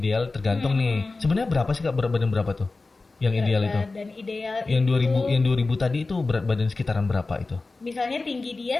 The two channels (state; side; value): quieter; right; 3.6 dB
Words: tergantung nih. Sebenarnya berapa sih Kak berat badan berapa tuh? Yang ideal itu? Dan ideal Yang 2000 itu, yang 2000 tadi itu berat badan sekitaran berapa itu? misalnya tinggi